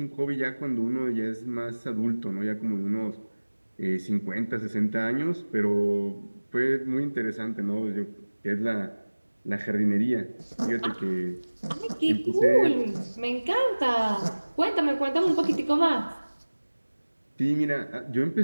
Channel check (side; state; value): both; inverted; correlation -1.00